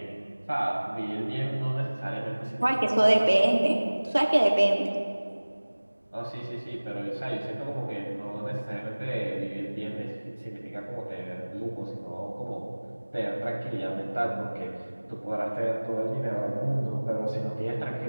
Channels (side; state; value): both; inverted; correlation -1.00